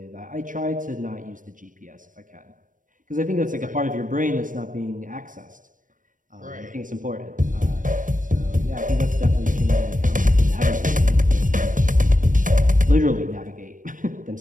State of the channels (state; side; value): late; left; 0.38 ms